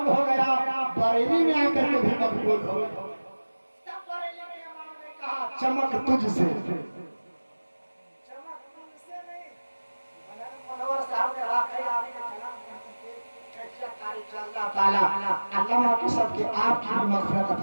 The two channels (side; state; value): both; inverted; correlation -1.00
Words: हो गया, बरेली में आकर के भी मकबूल हो गया। तब बरेली के इमाम ने कहा चमक तुझसे, चमक तुझसे नहीं। मनोवर साहब ने वाकई आपके कलाम की कैफियत तारीफ से अल्लाह ताला अल्लामा की सबके आपकी मग़फ़िरत